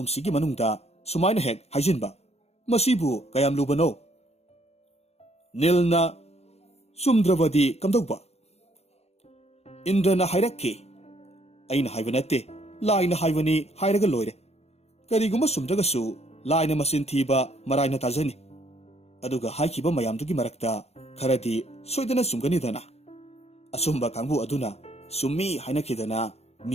ꯃꯅꯨꯡꯗ ꯁꯨꯃꯥꯏꯅ ꯍꯦꯛ ꯍꯥꯏꯖꯤꯟꯕ ꯃꯁꯤꯕꯨ ꯀꯌꯥꯝ ꯂꯨꯕꯅꯣ ꯅꯤꯜꯅ ꯆꯨꯝꯗ꯭ꯔꯕꯗꯤ ꯀꯝꯗꯧꯕ ꯏꯟꯗ꯭ꯔꯅ ꯍꯥꯏꯔꯛꯈꯤ ꯑꯩꯅ ꯍꯥꯏꯕ ꯅꯠꯇꯦ ꯂꯥꯏꯅ ꯍꯥꯏꯕꯅꯤ ꯍꯥꯏꯔꯒ ꯂꯣꯏꯔꯦ ꯀꯔꯤꯒꯨꯝꯕ ꯆꯨꯝꯗ꯭ꯔꯒꯁꯨ ꯂꯥꯏꯅ ꯃꯆꯤꯟ ꯊꯤꯕ ꯃꯔꯥꯏꯅ ꯇꯥꯖꯅꯤ ꯑꯗꯨꯒ ꯍꯥꯏꯈꯤꯕ ꯃꯌꯥꯝꯗꯨꯒꯤ ꯃꯔꯛꯇ ꯈꯔꯗꯤ ꯁꯣꯏꯗꯅ ꯆꯨꯝꯒꯅꯤꯗꯅ ꯑꯆꯨꯝꯕ ꯀꯥꯡꯕꯨ ꯑꯗꯨꯅ ꯆꯨꯝꯃꯤ ꯍꯥꯏꯅꯈꯤꯗꯅ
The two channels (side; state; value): right; late; 0.30 ms